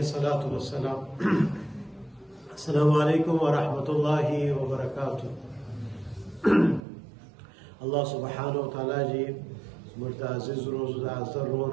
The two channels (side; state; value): left; drops out; at 6.9 s